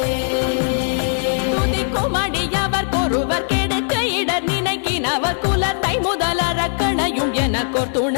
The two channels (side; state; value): right; silent; digital silence